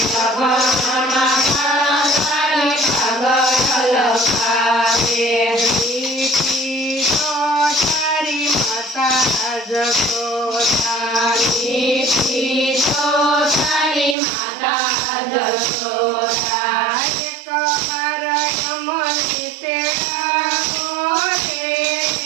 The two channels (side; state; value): left; drops out; at 14.2 s